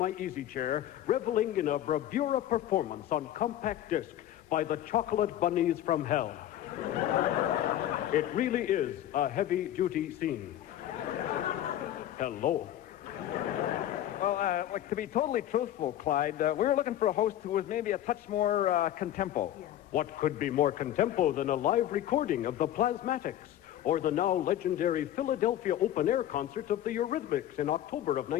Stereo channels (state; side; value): quieter; right; 12.2 dB